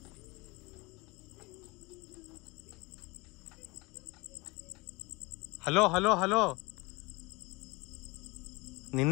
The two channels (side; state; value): right; quieter; 25.0 dB